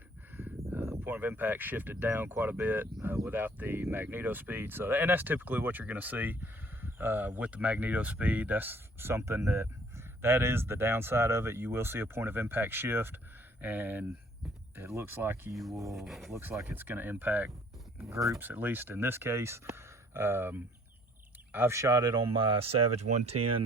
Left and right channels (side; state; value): both; normal; correlation 0.59